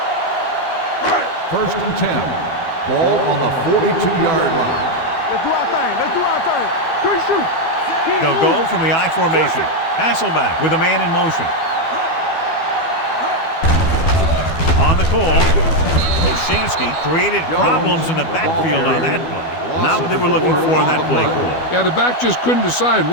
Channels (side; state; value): right; late; 12 ms